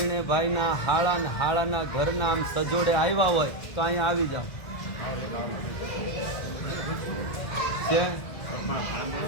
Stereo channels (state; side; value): late; right; 1.6 ms